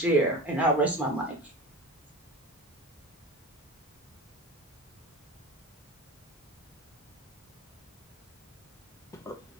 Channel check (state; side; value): normal; both; correlation 0.29